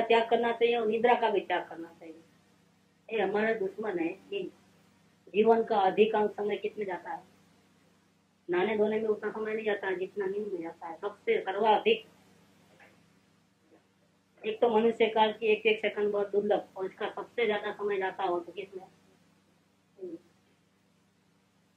त्याग करना चाहिए और निद्रा का भी त्याग करना चाहिए। ये हमारा दुश्मन है कि जीवन का अधिकांश समय किसमें जाता है, नहाने धोने में उतना समय नहीं जाता है जितना नींद में जाता है, सबसे सर्वाधिक। एक तो मनुष्य काल की एक एक सेकंड बहुत दुर्लभ, और इसका सबसे ज्यादा समय जाता हो तो किसमें?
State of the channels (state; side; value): identical; both; correlation 1.00